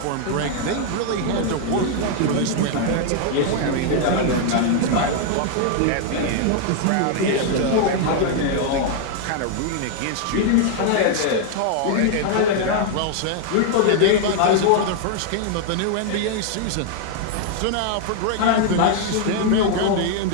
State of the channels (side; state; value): both; different; correlation 0.00